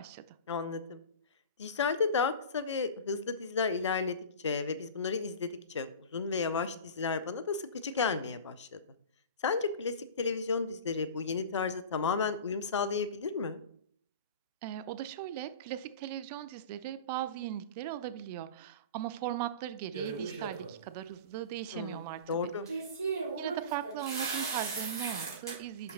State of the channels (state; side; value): inverted; both; correlation -0.33